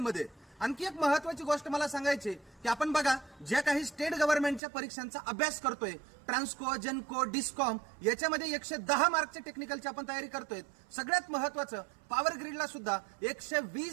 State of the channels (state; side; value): drops out; left; at 4.6 s